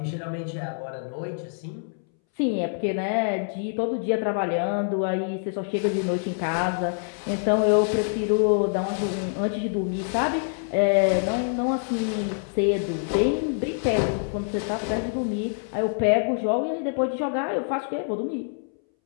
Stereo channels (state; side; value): silent; right; 61 dB below the other